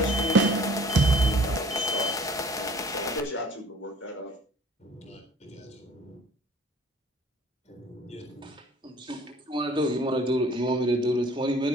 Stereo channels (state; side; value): normal; both; correlation 0.52